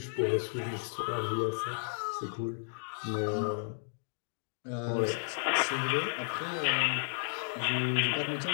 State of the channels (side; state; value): right; silent; digital silence